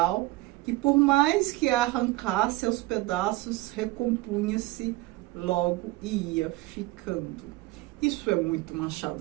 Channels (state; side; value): quieter; left; 19.8 dB